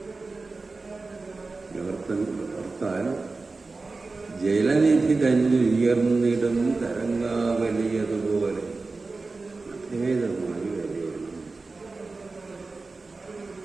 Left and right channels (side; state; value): left; quieter; 3.7 dB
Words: ഓർത്താൽ ജലനിധി തന്നെ ഉയർന്നിടും തരംഗാവലിയതുപോലെ അഭേദമായി വരികയാണ്.